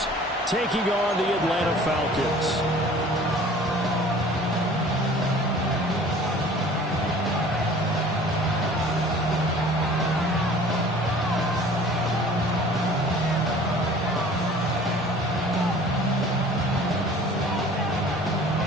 taking on the Atlanta Falcons.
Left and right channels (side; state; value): both; normal; correlation 0.48